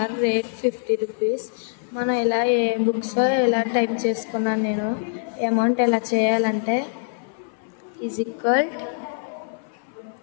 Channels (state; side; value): silent; right; 60 dB below the other